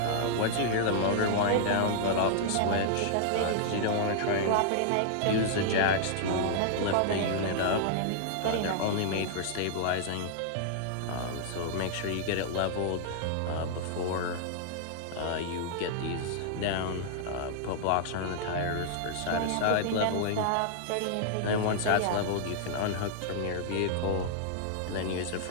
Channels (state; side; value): different; both; correlation -0.01